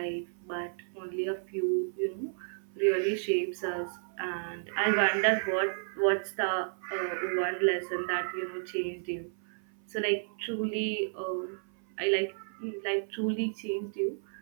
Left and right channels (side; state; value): left; silent; 56 dB below the other